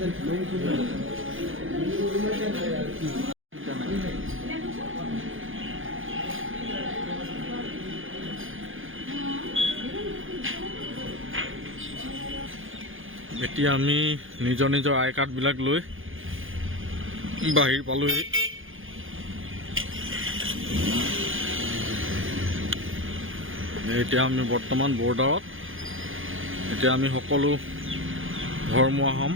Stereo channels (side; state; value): left; late; 0.58 ms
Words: এতিয়া আমি নিজৰ নিজৰ আই কাৰ্ডবিলাক লৈ বাহিৰ পালোহি। এতিয়া আমি বৰ্তমান বৰ্ডাৰত। এতিয়া আমি সকলো ঘৰমুৱা হ'ম।